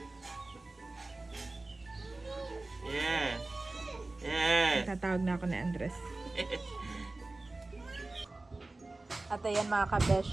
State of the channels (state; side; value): quieter; left; 3.1 dB